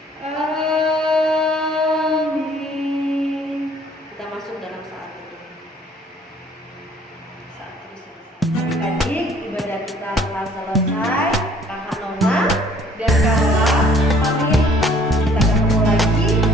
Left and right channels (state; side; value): normal; both; correlation 0.58